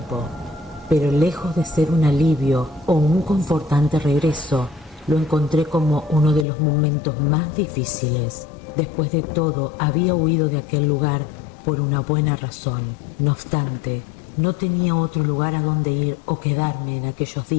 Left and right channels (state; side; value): drops out; right; at 6.5 s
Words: pero lejos de ser un alivio o un confortante regreso, lo encontré como uno de los momentos más difíciles. Después de todo, había huido de aquel lugar por una buena razón. No obstante, no tenía otro lugar a donde ir o quedarme en aquellos